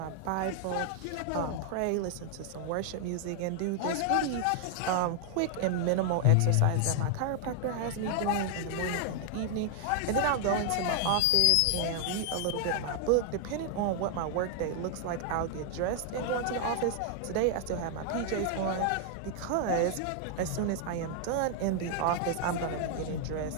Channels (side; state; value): both; different; correlation 0.00